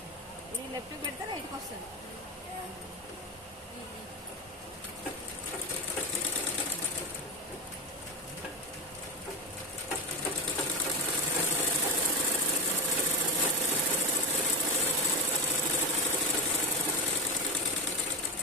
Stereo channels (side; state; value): both; normal; correlation 0.15